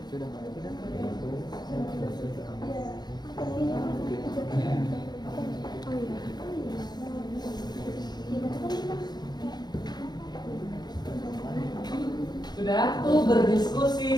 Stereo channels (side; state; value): right; late; 0.20 ms